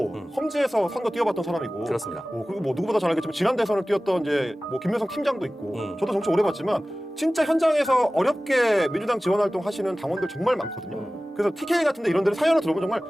험지에서 선거 뛰어봤던 사람이고 그렇습니다. 그리고 뭐 누구보다 잘 알겠지만 지난 대선을 뛰었던 이제 뭐 김명성 팀장도 있고 저도 정치 오래 봤지만 진짜 현장에서 어렵게 민주당 지원 활동 하시는 당원들 정말 많거든요. 그래서 TK 같은데 이런 데를 사연을 들어보면 정말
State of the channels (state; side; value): normal; both; correlation 0.97